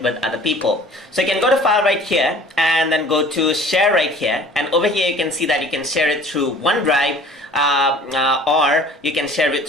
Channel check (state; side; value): normal; both; correlation 0.48